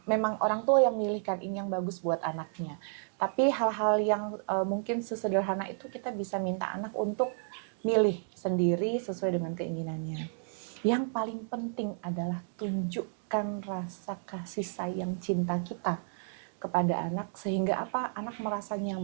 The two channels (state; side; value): silent; left; digital silence